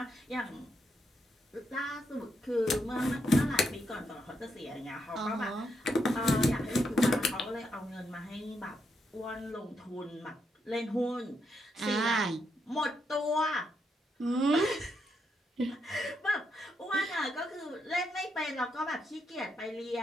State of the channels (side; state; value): both; normal; correlation 0.80